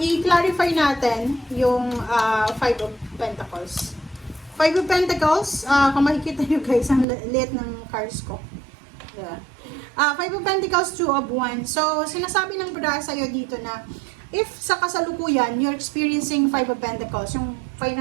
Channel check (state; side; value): drops out; left; at 7.1 s